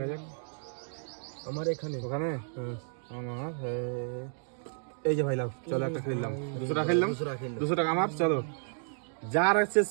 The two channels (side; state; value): left; silent; digital silence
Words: যাক। আমার এখানে ওখানে হ্যাঁ আমার এই যে ভাই লাভ, চলো একটা খেললাম, 200 টাকা খেললাম, 200 টাকা আমার। চলো যার শেষ